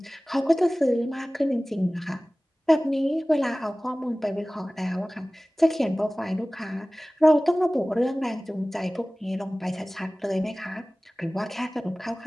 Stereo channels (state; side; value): normal; both; correlation 0.98